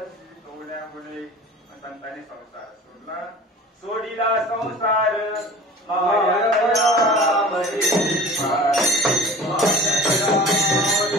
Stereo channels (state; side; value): normal; both; correlation 0.41